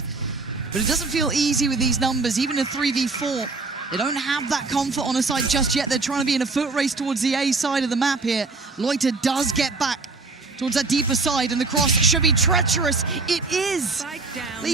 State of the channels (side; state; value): left; quieter; 3.8 dB